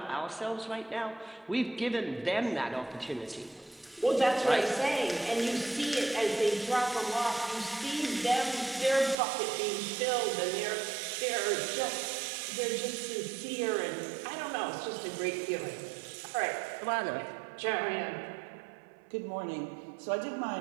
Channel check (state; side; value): drops out; left; at 9.2 s